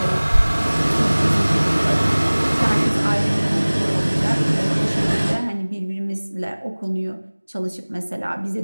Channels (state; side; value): inverted; both; correlation -1.00